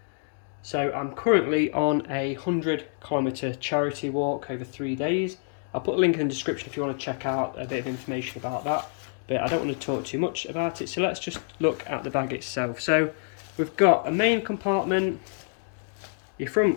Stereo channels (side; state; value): right; silent; 60 dB below the other